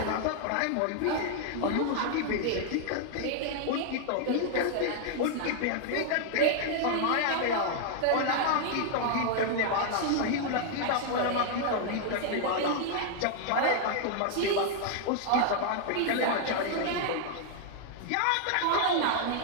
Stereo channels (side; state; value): both; different; correlation 0.00